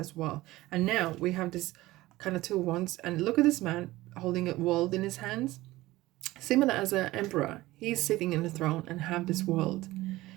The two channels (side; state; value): left; quieter; 18.0 dB